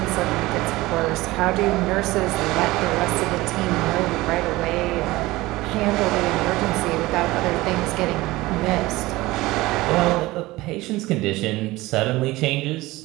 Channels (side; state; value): left; quieter; 19.3 dB